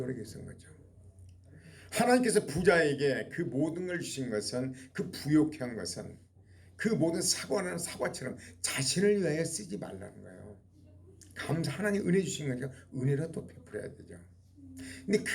거죠. 하나님께서 부자에게 그 모든 걸 주신 것은 그 부욕한 것은 그 모든 사과는 사과처럼 자신을 위하여 쓰지 말라는 거예요. 하나님 은혜 주신 거니까 은혜로 또 베풀어야 되죠. 근데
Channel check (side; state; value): both; identical; correlation 1.00